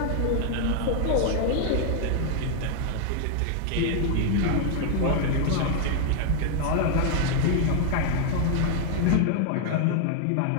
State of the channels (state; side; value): different; both; correlation 0.00